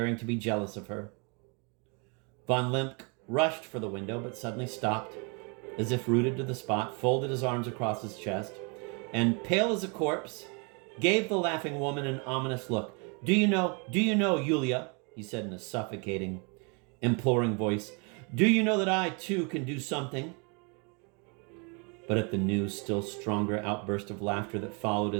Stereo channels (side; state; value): left; quieter; 33.7 dB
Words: to be jealous of her. Von Limp rushed for the window, but suddenly stopped, as if rooted to the spot, folded his arms across his chest, and, pale as a corpse, gave the laughing woman an ominous look. Do you know, Yulia," he said in a suffocating, imploring voice, "do you know that I, too, can do something?" But at the new, still stronger outburst of laughter that followed